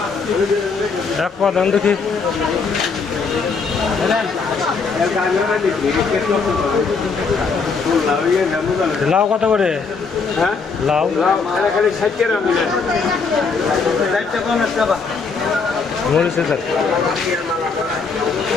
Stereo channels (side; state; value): right; quieter; 4.9 dB